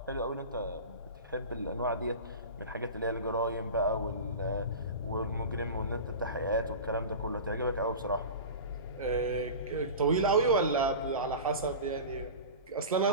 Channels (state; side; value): inverted; both; correlation -0.31